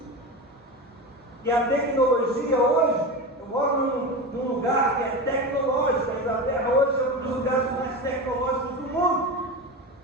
que a tecnologia hoje, eu moro num lugar que é tecnológico. A Inglaterra hoje é um dos lugares mais tecnológicos do mundo.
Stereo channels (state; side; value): normal; both; correlation 0.24